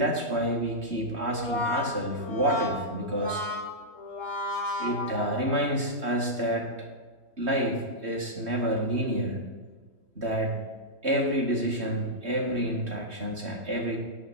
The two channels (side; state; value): left; late; 3.2 ms